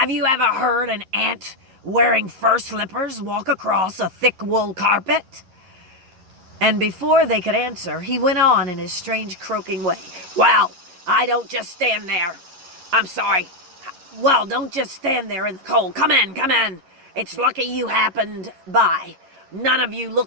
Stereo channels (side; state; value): left; late; 11 ms